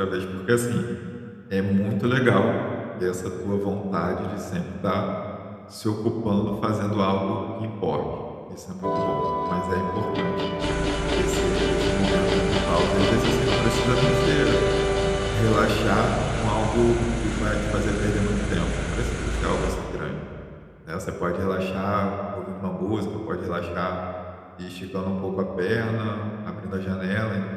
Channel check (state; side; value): identical; both; correlation 1.00